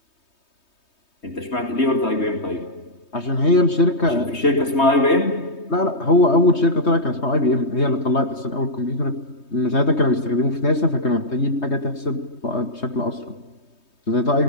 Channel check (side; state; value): right; late; 3.2 ms